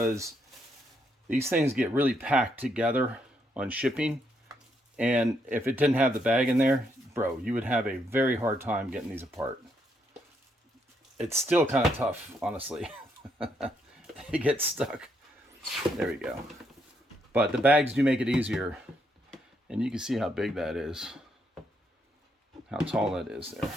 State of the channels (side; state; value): both; normal; correlation 0.76